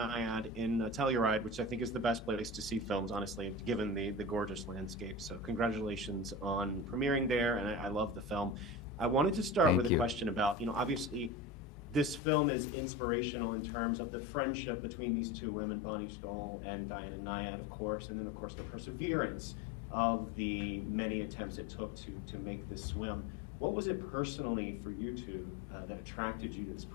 in Telluride, which I think is the best place to see films, honestly, given the gorgeous landscape. So congratulations on premiering there, and I love the film. I wanted to start with Thank a you. question about, obviously this film is inspirational in terms of the friendship between these two women, Bonnie Stoll and Diana Nyad, of course, and then of course the perseverance of the many attempts it took to make this swim. What was it personally for you two that attracted you to this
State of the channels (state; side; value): drops out; right; at 12.2 s